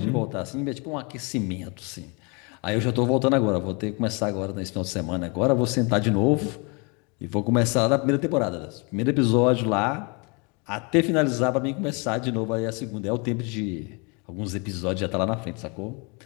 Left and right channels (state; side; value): quieter; right; 31.7 dB